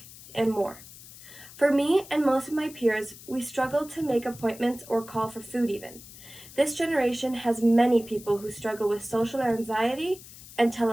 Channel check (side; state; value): left; noise; hiss, 18 dB below the sound